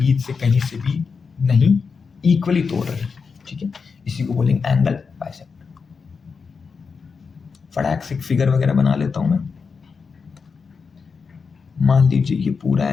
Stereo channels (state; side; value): quieter; right; 5.3 dB